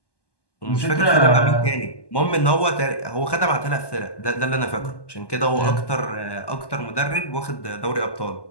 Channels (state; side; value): late; right; 1.1 ms